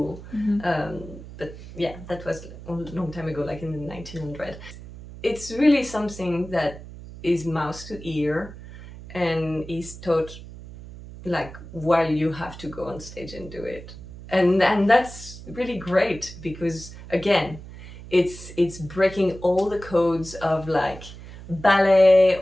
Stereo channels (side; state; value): right; noise; hum, 15 dB below the sound